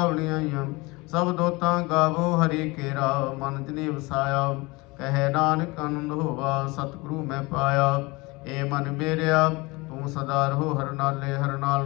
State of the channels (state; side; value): quieter; right; 24.2 dB